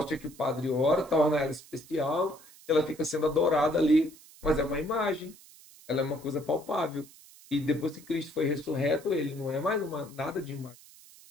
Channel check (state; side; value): noise; right; hiss, 22 dB below the sound